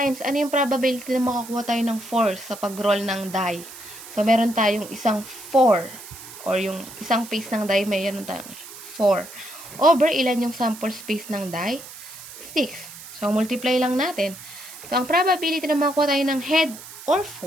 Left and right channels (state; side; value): noise; right; hiss, 15 dB below the sound